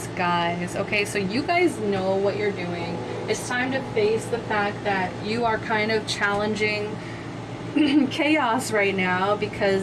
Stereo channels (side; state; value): both; identical; correlation 1.00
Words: guise. Okay, so you guys know what you're doing. It's time to face the fact that you are kind of challenging chaos right now,